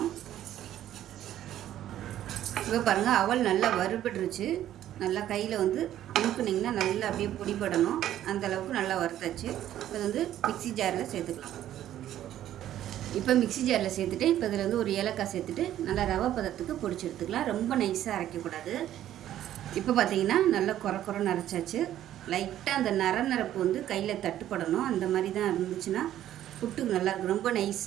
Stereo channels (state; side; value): quieter; left; 12.1 dB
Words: இப்போ பாருங்கள், அவல் நல்லா வறுபட்டுருச்சு. நல்லா கையில் அமுக்குனிங்கன்னா நல்லா அப்படியே பொடிப்படணும். அந்தளவுக்கு நல்லா வறுத்தாச்சு. இப்போ மிக்சி ஜாரில் சேர்த்துக்கலாம். இப்போ மிக்சி ஜாரில் சேர்த்துட்டு இப்போ இதில் ஒரு ஏலக்காய் சேர்த்துட்டு நல்லா ரவை பதத்துக்கு பொடிச்சு எடுத்துக்கலாம். ரொம்ப நைஸாக அரைக்கக்கூடாது. இப்போ பார்த்தீங்கன்னா நல்லா குறைன்னு அரைச்சாச்சு. லைட்டாக அந்த நரப்பு கையில் தட்டுப்படணும். அந்த மாதிரி தான் இருந்துச்சுன்னா புட்டுக்கு நல்லாயிருக்கும். ரொம்ப